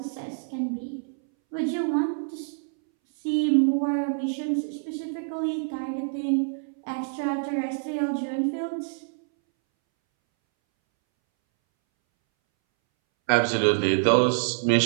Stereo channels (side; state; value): left; silent; 61 dB below the other